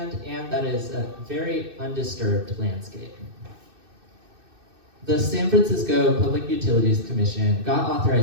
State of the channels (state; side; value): late; left; 2.6 ms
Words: and that is a very undisturbed landscape. The San Francisco Public Utilities Commission got